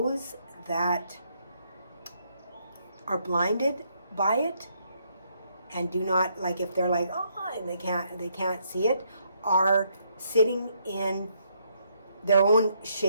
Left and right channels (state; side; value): inverted; both; correlation -0.73